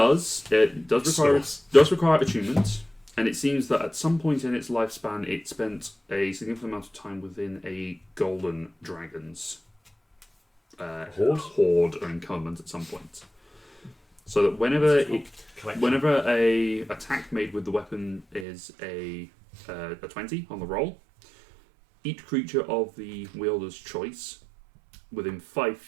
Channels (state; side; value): drops out; left; at 18.4 s